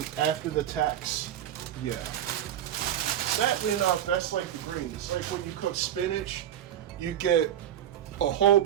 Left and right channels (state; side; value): quieter; left; 10.7 dB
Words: after the tax, yeah. Sadly enough, that's like the greens. Like when you cook spinach, you get a whole